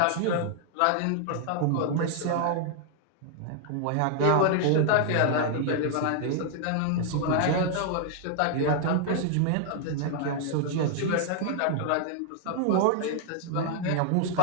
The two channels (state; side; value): different; both; correlation 0.00